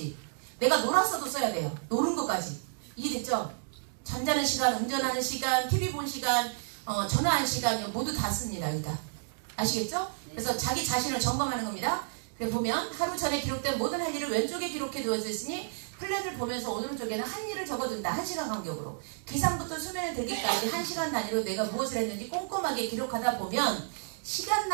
내가 놀았어도 써야 돼요. 노는 것까지. 이해됐죠? 잠자는 시간, 운전하는 시간, TV 본 시간, 전화할 시간 모두 다 씁니다. 여기다. 아시겠죠? 그래서 자기 자신을 점검하는 겁니다. 그래서 보면 하루 전에 기록된 모든 할 일을 왼쪽에 기록해 두어졌으니 플랜을 보면서 오른쪽에는 한 일을 적어둔다. 1시간 간격으로. 기상부터 수면에 들기까지 1시간 단위로 내가 무엇을 했는지 꼼꼼하게 기록하다 보면 시간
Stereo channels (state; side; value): silent; left; digital silence